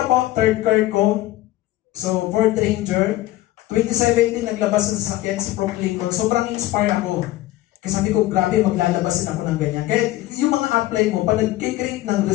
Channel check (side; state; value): right; quieter; 16.0 dB